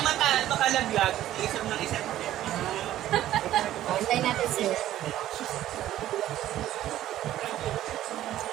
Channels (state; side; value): quieter; left; 13.2 dB